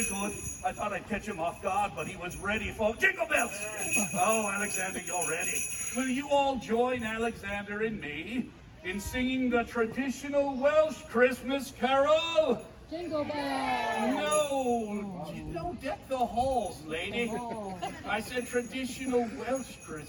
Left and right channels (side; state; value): both; identical; correlation 1.00